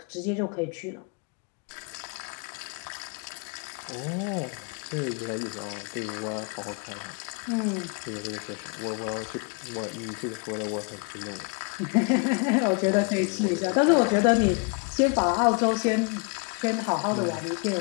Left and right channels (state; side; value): quieter; right; 33.1 dB